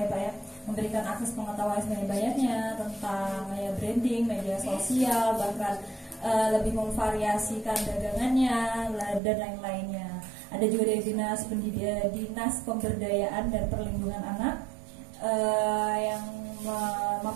Pak ya, memberikan akses pengetahuan sebanyak-banyaknya tentang ya branding, media sosial, bahkan lebih memvariasikan dagangannya dan lain-lainnya. Ada juga dari Dinas Pemberdayaan dan Perlindungan Anak yang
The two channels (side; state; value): left; drops out; at 9.2 s